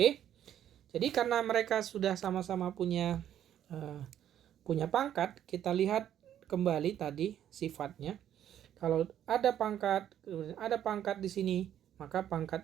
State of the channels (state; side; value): quieter; left; 10.6 dB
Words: Jadi karena mereka sudah sama-sama punya pangkat, kita lihat kembali tadi sifatnya. Kalau ada pangkat di sini, maka